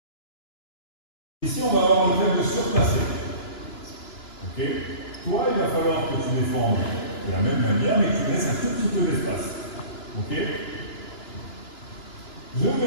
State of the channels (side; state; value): right; late; 2.9 ms